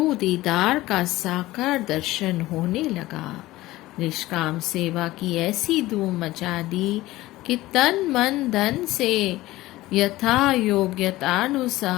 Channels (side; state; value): right; quieter; 17.6 dB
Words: दीदार का साकार दर्शन होने लगा। निष्काम सेवा की ऐसी धूम मचा दी कि तन मन धन से यथा